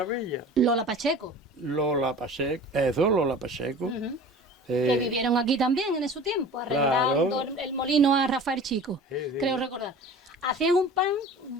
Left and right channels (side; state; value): both; normal; correlation 0.40